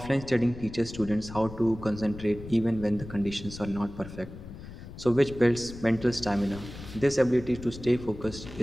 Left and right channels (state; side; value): noise; left; rumble, 13 dB below the sound